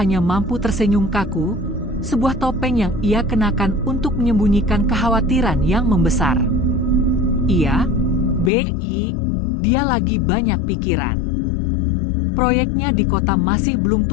mampu tersenyum kaku, sebuah topeng yang ia kenakan untuk menyembunyikan kekhawatiran yang membesar. "Iya, Bei, dia lagi banyak pikiran. Proyeknya di kota masih belum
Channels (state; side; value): drops out; right; at 8.5 s